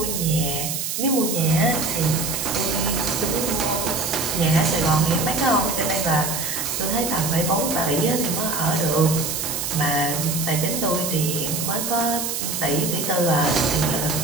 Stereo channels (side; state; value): right; noise; hiss, 3 dB below the sound